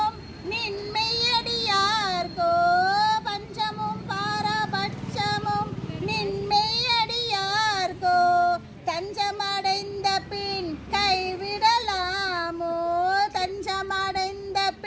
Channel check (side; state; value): both; identical; correlation 1.00